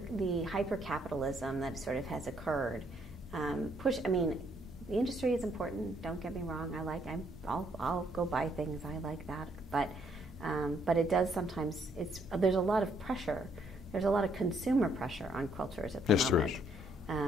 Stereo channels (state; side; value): normal; both; correlation 0.69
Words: hyper capitalism that sort of has occurred, the industry is important. Don't get me wrong. I'll go buy things. I like that, but it does sometimes. There's a lot of pressure. There's a lot of consumer pressure on quilters at the moment. Yes, there is.